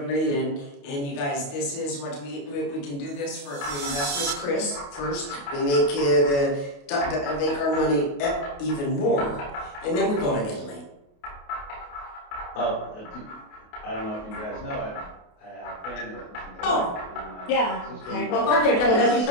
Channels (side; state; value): right; late; 28 ms